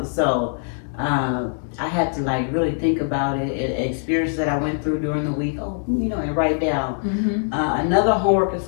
so I had to like really think about it, experiences that I went through during the week, and write down. Another homework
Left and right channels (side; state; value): right; silent; digital silence